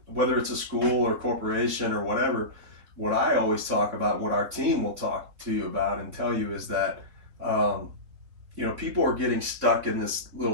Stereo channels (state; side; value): late; left; 4.0 ms